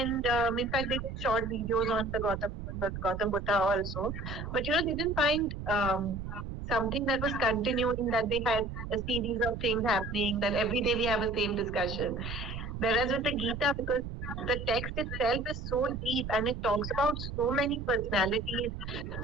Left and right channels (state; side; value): noise; right; rumble, 7 dB below the sound